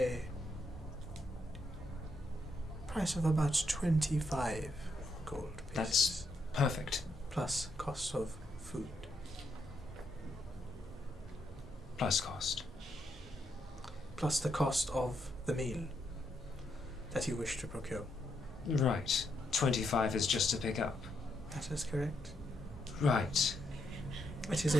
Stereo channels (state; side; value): normal; both; correlation 0.78